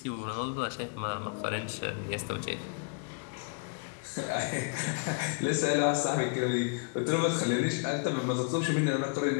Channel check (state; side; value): quieter; right; 35.4 dB